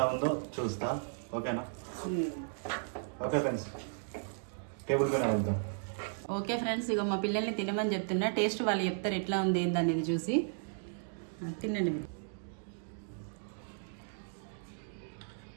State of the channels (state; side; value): silent; left; digital silence